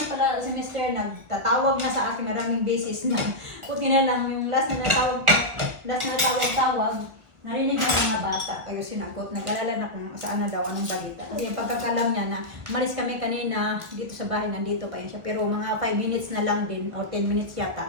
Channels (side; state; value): left; late; 1.6 ms